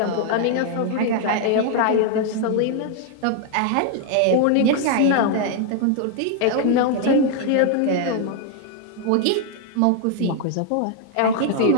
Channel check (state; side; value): different; both; correlation 0.00